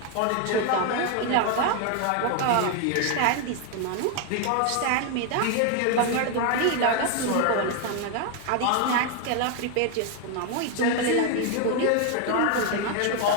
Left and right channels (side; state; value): both; different; correlation 0.01